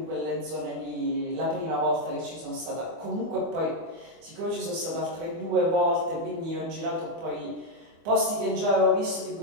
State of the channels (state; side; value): late; left; 24 ms